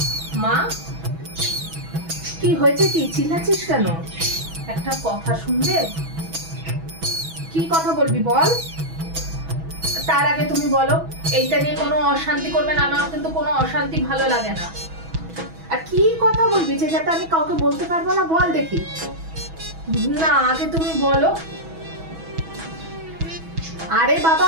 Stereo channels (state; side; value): late; left; 6.1 ms